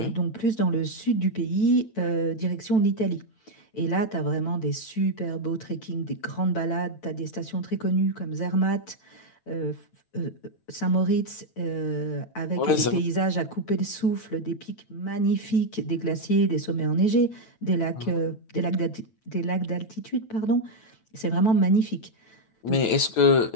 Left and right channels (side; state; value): right; late; 9.1 ms